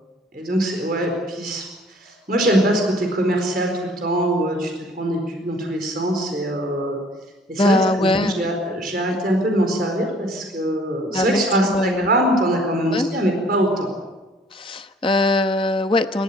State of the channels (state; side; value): normal; both; correlation 0.56